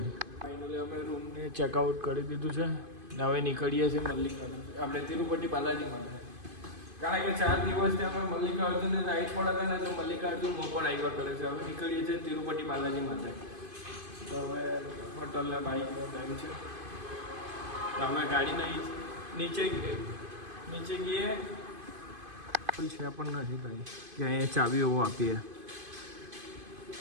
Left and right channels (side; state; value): left; late; 2.5 ms